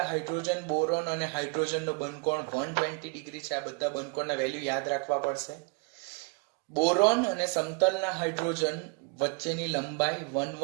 હાઇડ્રોજન, બોરોન અને હાઇડ્રોજનનો બંધકોણ 120 ડિગ્રી છે. આ બધા બંધકોણના વેલ્યુ યાદ રાખવા પડશે. બોરોન અને સમતલના હાઇડ્રોજન વચ્ચેની લંબાઈ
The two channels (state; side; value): quieter; left; 31.4 dB